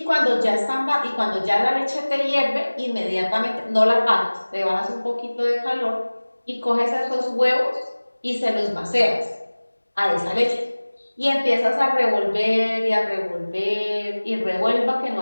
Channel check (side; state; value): both; inverted; correlation -1.00